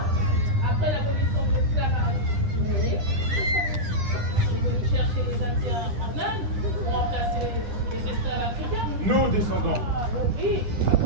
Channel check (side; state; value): left; late; 9.8 ms